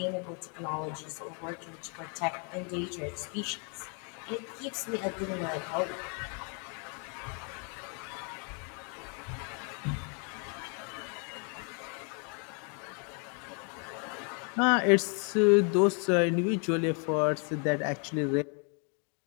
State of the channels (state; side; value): quieter; right; 38.3 dB